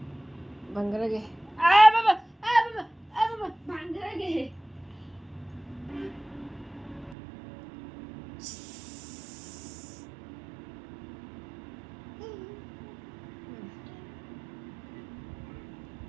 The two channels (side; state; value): left; drops out; at 7.2 s